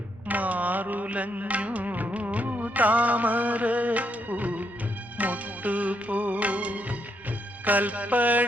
മാറുലഞ്ഞു താമരപ്പൂ മുട്ടുപോ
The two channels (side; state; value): both; normal; correlation 0.77